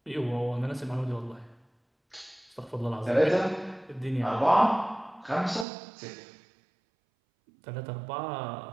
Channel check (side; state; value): left; drops out; at 5.7 s